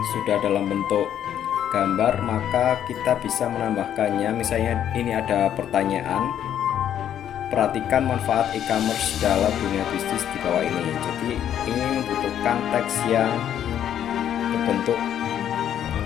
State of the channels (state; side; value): quieter; right; 10.1 dB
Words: sudah dalam bentuk gambar, maka kita bisa menambahkannya. Misalnya ini ada pertanyaan, perhatikan manfaat e-commerce dalam dunia bisnis di bawah ini. Jadi ini membutuhkan teks yang berbentuk